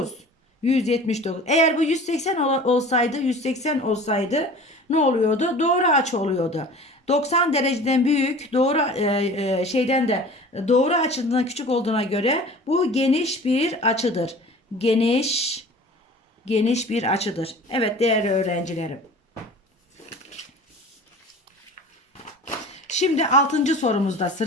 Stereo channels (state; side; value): normal; both; correlation 0.42